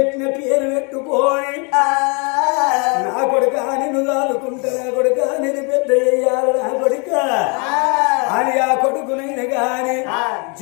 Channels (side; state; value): right; quieter; 34.3 dB